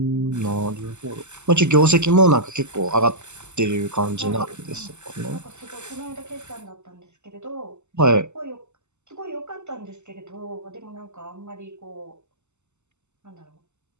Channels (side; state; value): left; late; 0.83 ms